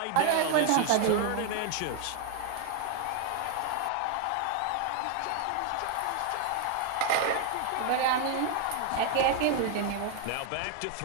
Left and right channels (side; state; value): both; different; correlation 0.00